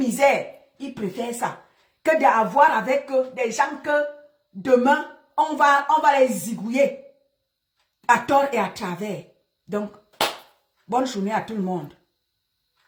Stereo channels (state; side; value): identical; both; correlation 1.00